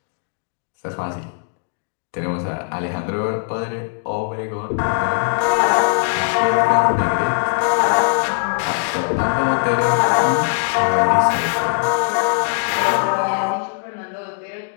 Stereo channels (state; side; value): silent; right; digital silence